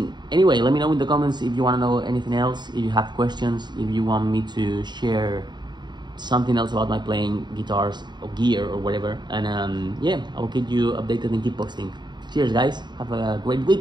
anyway, let me know in the comments if you want to know anything else, if you have questions, if you want me to share something else about my playing guitars or gear or whatever. And yeah, I will keep you updated and keep posting. Cheers guys, have a great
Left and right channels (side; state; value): left; late; 0.21 ms